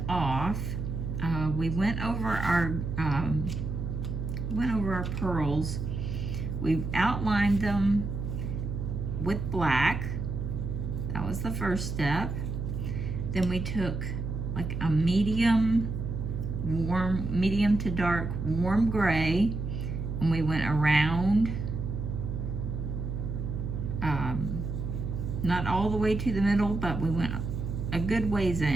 off, we went over our pearls. We've outlined them with black. That was the first step. Then we took like a medium to dark warm gray, and we went around, not all the way to the middle, but we went a good ways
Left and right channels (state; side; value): noise; right; hum, 4 dB below the sound